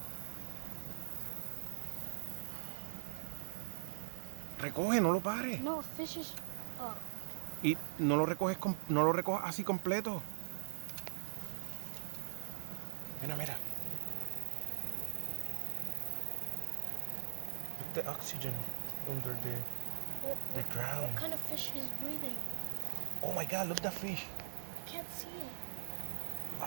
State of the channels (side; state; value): left; silent; digital silence